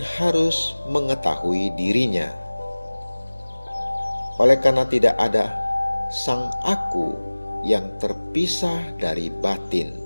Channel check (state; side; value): inverted; both; correlation -1.00